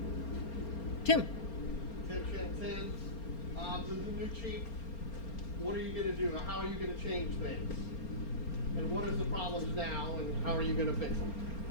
Tim. Tim Chantan, to the new chief, what are you going to do? How are you going to change things? And what is the problems now, and how are you going to fix them?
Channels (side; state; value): right; late; 4.3 ms